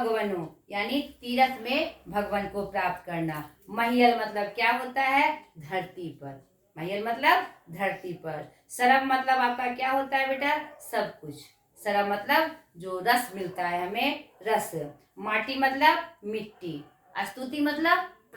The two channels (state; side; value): identical; both; correlation 1.00